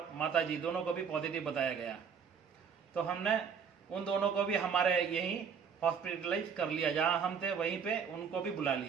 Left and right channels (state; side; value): quieter; left; 6.7 dB